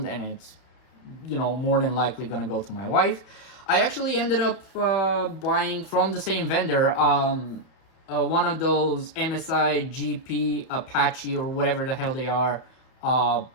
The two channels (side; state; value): right; late; 32 ms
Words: and it's more than likely gonna go to my wife. I actually ended up buying from the same vendor one of those MSI GP Apache or whatever the hell they are